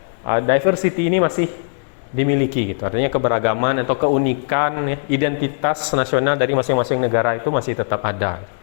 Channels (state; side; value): silent; right; digital silence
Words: diversity ini masih dimiliki gitu. Artinya keberagaman atau keunikan ya, identitas nasional dari masing-masing negara itu masih tetap ada.